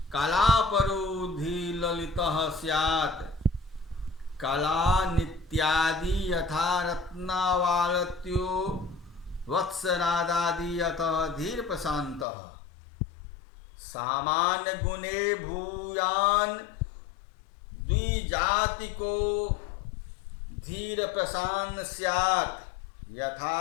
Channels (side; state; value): right; drops out; at 12.2 s